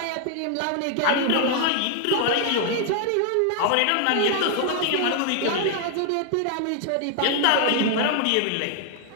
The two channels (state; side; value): different; both; correlation 0.00